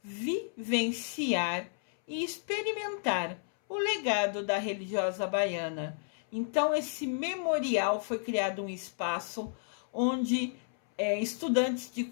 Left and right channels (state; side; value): silent; right; 56 dB below the other